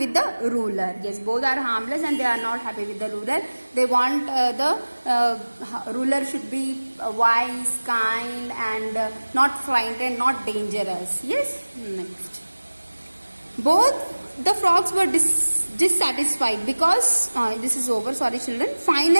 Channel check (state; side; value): inverted; both; correlation -1.00